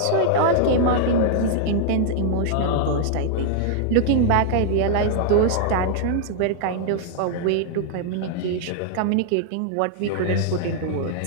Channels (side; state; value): both; different; correlation -0.01